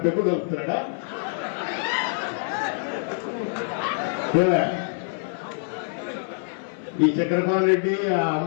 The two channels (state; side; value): silent; right; 58 dB below the other